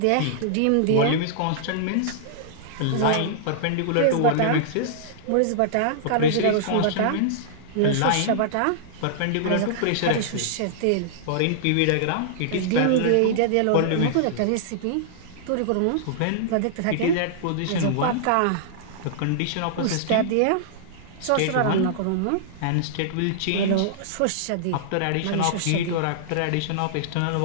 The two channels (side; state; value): both; different; correlation -0.02